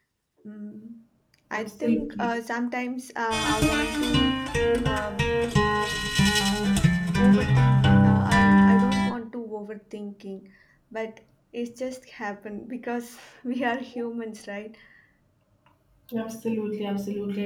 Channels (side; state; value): both; identical; correlation 1.00